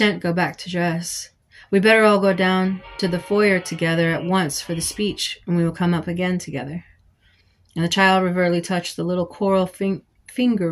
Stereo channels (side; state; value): both; identical; correlation 1.00